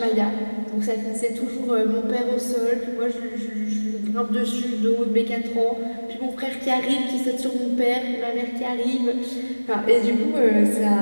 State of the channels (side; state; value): both; inverted; correlation -1.00